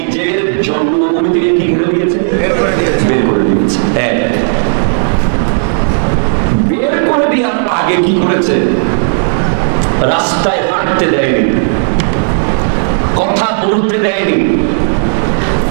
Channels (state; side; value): silent; left; digital silence